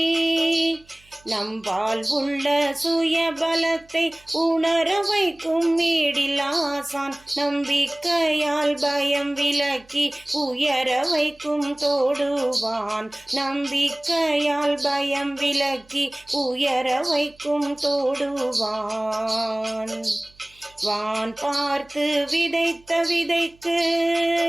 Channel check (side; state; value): right; noise; hum, 29 dB below the sound